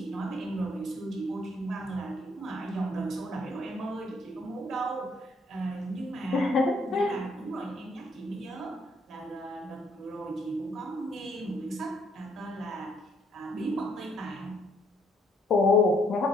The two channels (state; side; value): normal; both; correlation 0.68